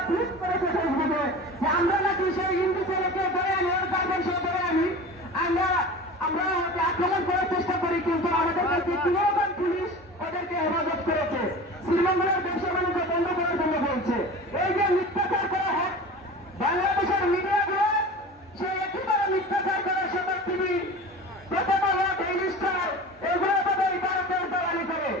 টুইট করেছে ফেসবুকে যে আমরা নাকি সেই হিন্দু ছেলেকে ধরে আনি, ওর গার্মেন্টস ধরে আনি, আমরা আক্রমণ করার চেষ্টা করি, কিন্তু আমাদের কাছে কিরকম পুলিশ ওদেরকে হেফাজত করেছে, শ্রীমঙ্গলের ব্যবসা বাণিজ্য বন্ধ করার জন্য বলছে। এই যে মিথ্যাচার করা হয় বাংলাদেশের মিডিয়াগুলো, সে একেবারে মিথ্যাচার করে সবার টিভি, প্রথম আলো, ডেইলি স্টার, এগুলো তাদের ভারতের দালালি করে।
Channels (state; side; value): normal; both; correlation 0.35